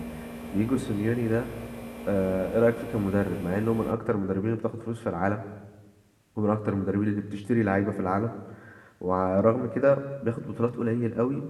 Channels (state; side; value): identical; both; correlation 1.00